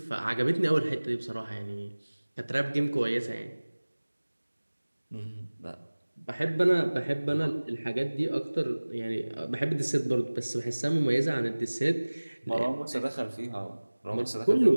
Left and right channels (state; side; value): inverted; both; correlation -1.00